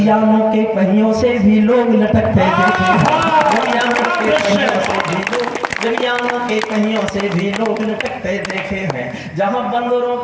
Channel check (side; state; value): both; identical; correlation 1.00